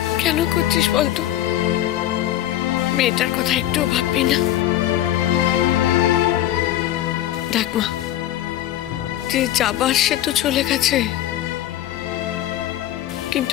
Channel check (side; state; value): right; quieter; 13.2 dB